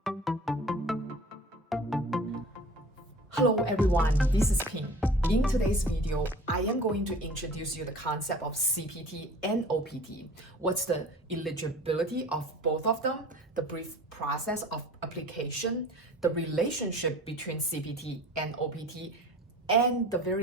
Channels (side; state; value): both; normal; correlation 0.43